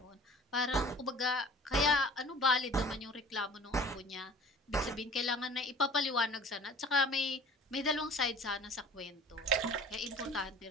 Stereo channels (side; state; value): both; normal; correlation 0.46